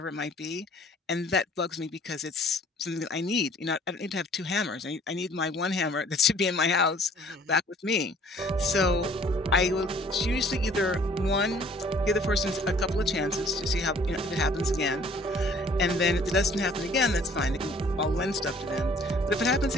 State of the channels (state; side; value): normal; both; correlation 0.55